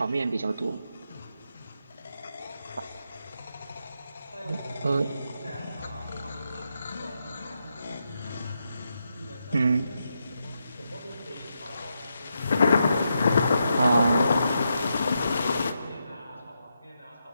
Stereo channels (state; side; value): inverted; both; correlation -0.84